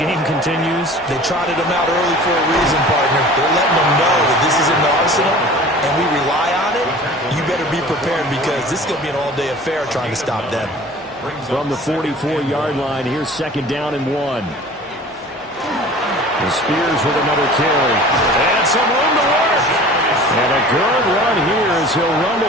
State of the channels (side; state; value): both; normal; correlation 0.43